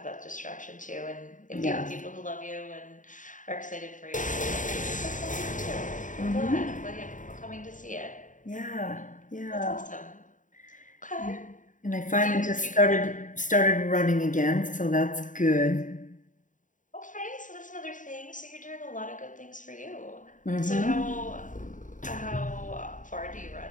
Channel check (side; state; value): right; late; 0.37 ms